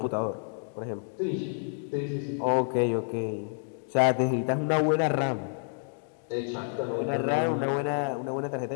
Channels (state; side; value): silent; right; digital silence